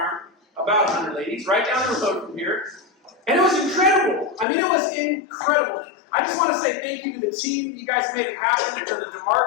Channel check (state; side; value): drops out; right; at 4.5 s